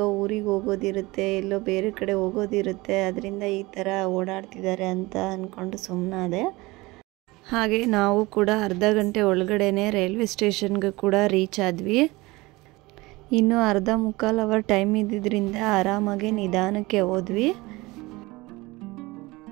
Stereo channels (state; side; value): quieter; left; 21.9 dB